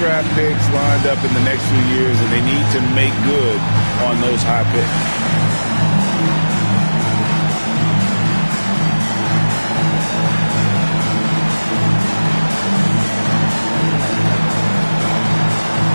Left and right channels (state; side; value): inverted; both; correlation -1.00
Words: picks lined up in the next few years, and they need to make good on those high picks.